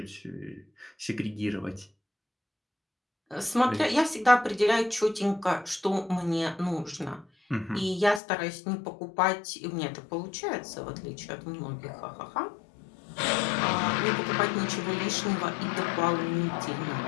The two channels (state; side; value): drops out; right; at 8.2 s